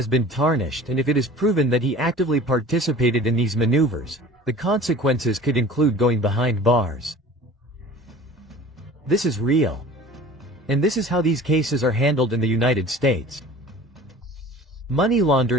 been tarnished, and if it is proven that he actively participated in these maneuvers, the consequences could include going behind bars. This is real. And this is how these cases are handled in the United States. Money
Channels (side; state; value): both; normal; correlation 0.43